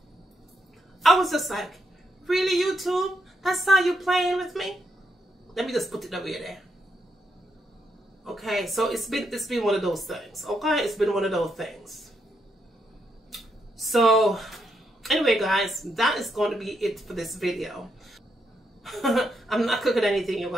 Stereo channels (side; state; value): both; normal; correlation 0.79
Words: I was just like, really, YouTube? That's how you playing with me? Let me just put it away there. Okay, so it's been one of those things. Okay, it's been one of those things. So anyway, guys, that is going to be it for this video. I'm not cooking anything, you